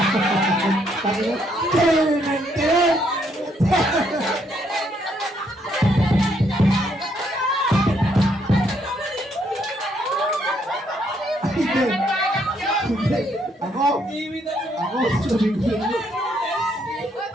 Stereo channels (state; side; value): normal; both; correlation 0.72